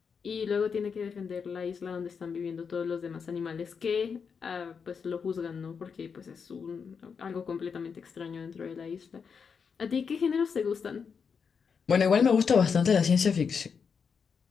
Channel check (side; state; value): right; quieter; 6.1 dB